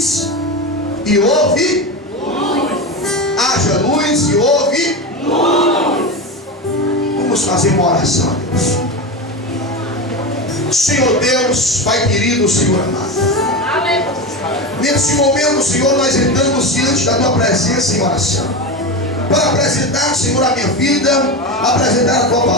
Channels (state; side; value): normal; both; correlation 0.20